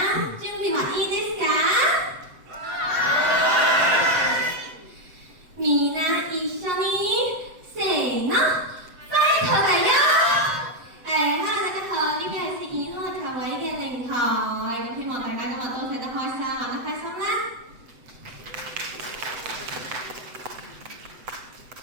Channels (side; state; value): left; late; 7.9 ms